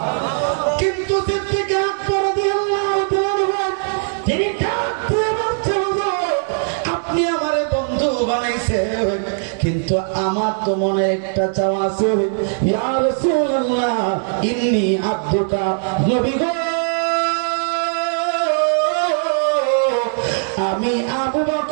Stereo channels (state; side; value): silent; left; digital silence